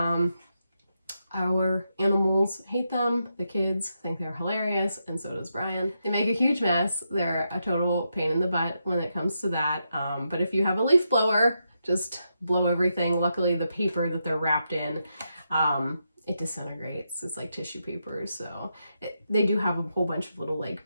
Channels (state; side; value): inverted; both; correlation -0.83